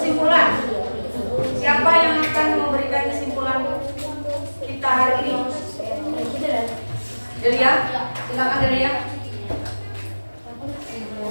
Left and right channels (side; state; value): both; inverted; correlation -1.00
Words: siapa yang akan memberikan kesimpulan kita hari ini? Delia, silakan Delia.